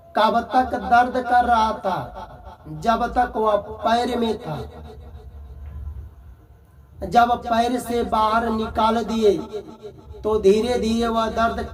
कब तक दर्द कर रहा था? जब तक वह पैर में था। जब पैर से बाहर निकाल दिए तो धीरे धीरे वह दर्द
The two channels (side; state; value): both; identical; correlation 1.00